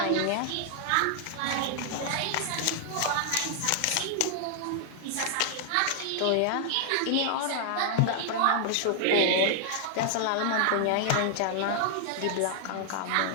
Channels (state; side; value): different; both; correlation 0.00